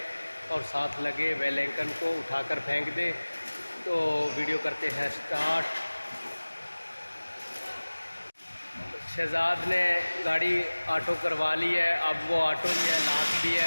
और साथ लगे बेल आइकन को उठाकर फेंक दें। तो वीडियो करते हैं स्टार्ट। शहजाद ने गाड़ी ऑटो करवा ली है। अब वो ऑटो भी है, लाख भी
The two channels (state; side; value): inverted; both; correlation -1.00